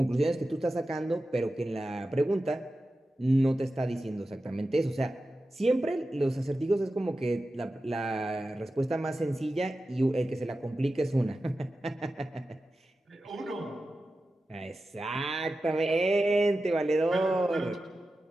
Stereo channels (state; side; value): normal; both; correlation 0.93